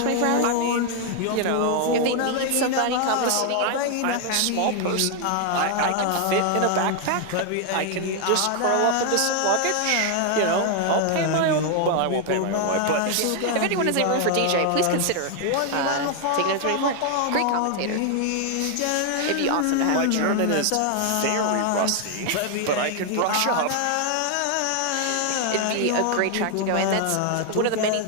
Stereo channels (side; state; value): both; different; correlation 0.00